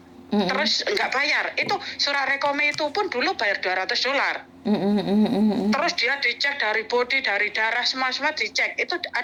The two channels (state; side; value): identical; both; correlation 1.00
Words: terus nggak bayar. Itu surat rekomnya itu pun dulu bayar $200. Terus dia dicek dari body, dari darah, semua dicek. Itu